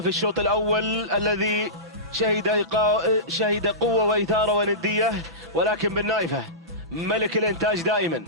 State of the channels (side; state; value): both; normal; correlation -0.20